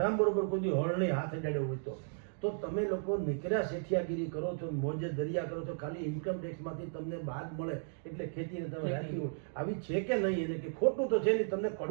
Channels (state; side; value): silent; left; digital silence